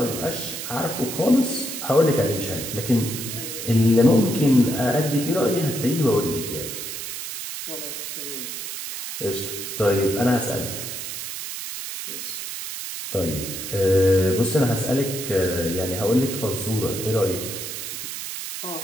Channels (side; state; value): right; noise; hiss, 7 dB below the sound